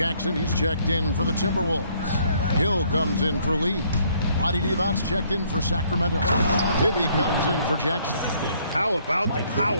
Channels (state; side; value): inverted; both; correlation -0.65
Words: he's checked in for the Timberwolves. Hill comes in for Lee. Vlade Divac's checked in for Sacramento. Bibby comes in for Jackson. How about the